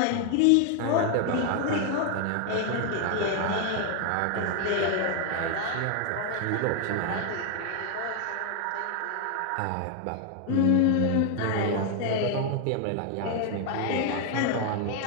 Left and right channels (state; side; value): different; both; correlation 0.00